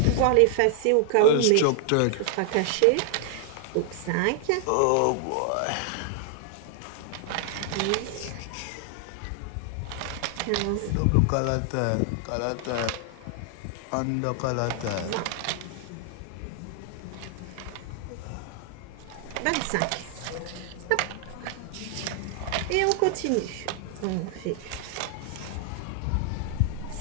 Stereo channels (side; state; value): both; different; correlation 0.00